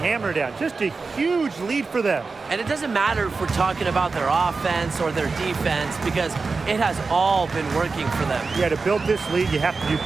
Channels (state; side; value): quieter; left; 4.3 dB